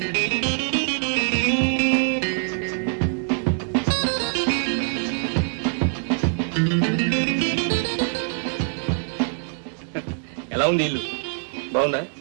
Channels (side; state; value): left; silent; 63 dB below the other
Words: ఎలా ఉంది ఇల్లు? బాగుందా?